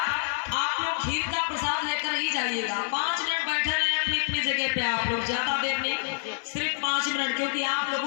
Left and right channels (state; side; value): silent; right; 60 dB below the other